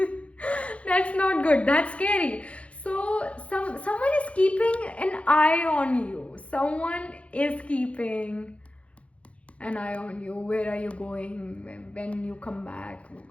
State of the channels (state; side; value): late; right; 0.063 ms